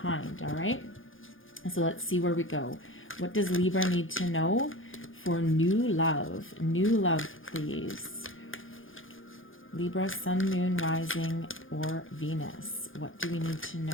all right? So let's see where we go. What does Libra need to know for new love? New love, please. Libra, Sun, Moon, Rising, or Venus. What do we need to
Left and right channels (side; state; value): right; late; 0.58 ms